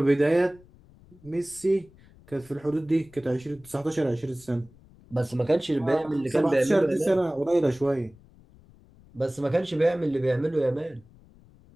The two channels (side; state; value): left; noise; rumble, 26 dB below the sound